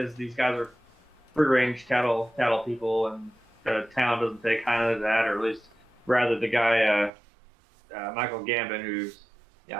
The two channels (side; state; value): left; drops out; at 7.1 s